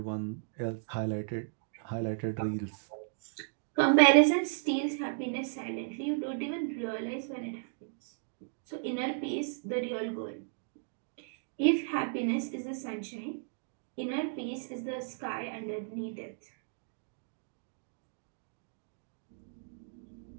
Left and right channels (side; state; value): left; silent; digital silence